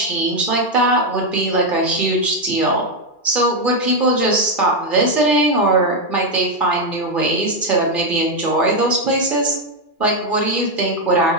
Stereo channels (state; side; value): late; right; 2.4 ms